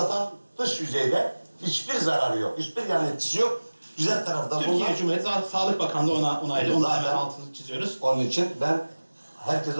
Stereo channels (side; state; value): both; inverted; correlation -1.00